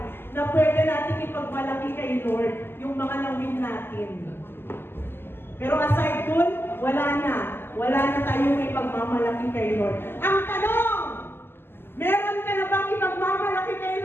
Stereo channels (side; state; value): right; late; 0.11 ms